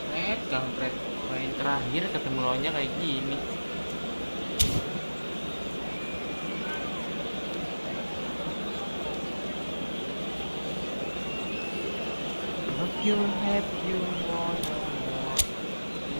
Kampret. Main terakhir ketemu lawannya kayak gini. Have you want more?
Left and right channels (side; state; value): both; inverted; correlation -1.00